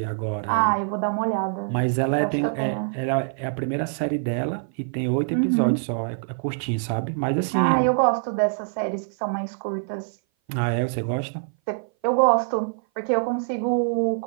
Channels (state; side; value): silent; left; 58 dB below the other